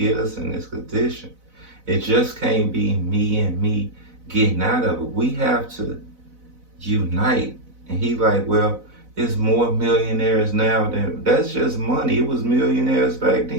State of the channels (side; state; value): left; late; 4.0 ms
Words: us in this condition. It just can't be me and me getting out of it. We have to unite. And he like, well, it's more millionaires now than, that's just money. It was millionaires back